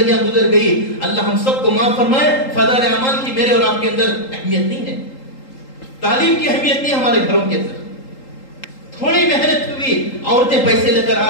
گزر گئی. اللہ ہم سب کو معاف فرمائے. فضائل اعمال کی میرے اور آپ کے اندر اہمیت نہیں ہے، تعلیم کی اہمیت نہیں ہمارے گھروں کے اندر. تھوڑی محنت ہوئی، عورتیں پیسے لے کر آ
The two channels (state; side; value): late; right; 3.8 ms